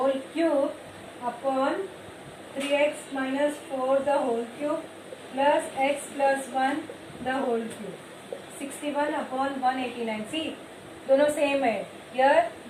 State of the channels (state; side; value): identical; both; correlation 1.00